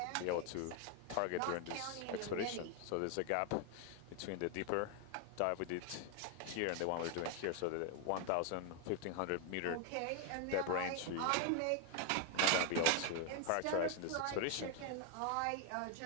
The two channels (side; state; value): both; different; correlation 0.01